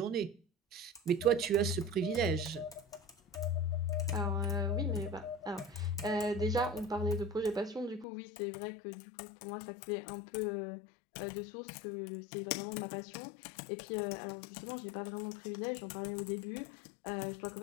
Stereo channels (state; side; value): drops out; right; at 8.1 s